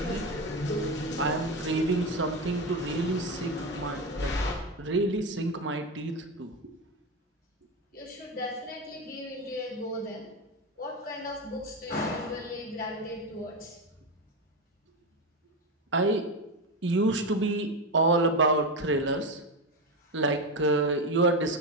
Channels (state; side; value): normal; both; correlation 0.15